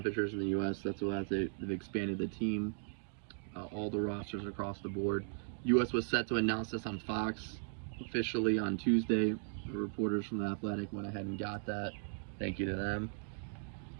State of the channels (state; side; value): silent; left; digital silence